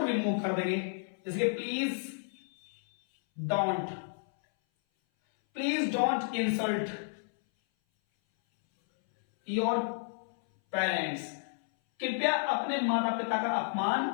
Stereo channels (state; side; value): silent; right; 57 dB below the other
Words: रिमूव कर देंगे, जैसे please don't insult your parents, कृपया अपने माता पिता का अपमान